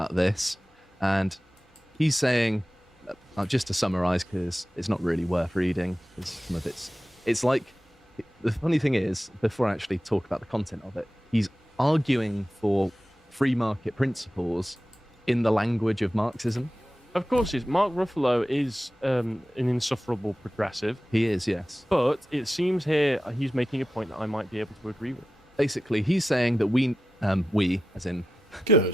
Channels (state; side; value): normal; both; correlation 0.93